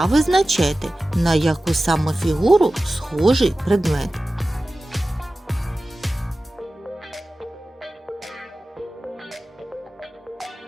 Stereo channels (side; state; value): both; normal; correlation 0.96